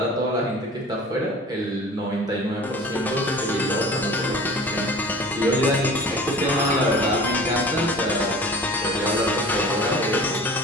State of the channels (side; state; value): both; normal; correlation 0.42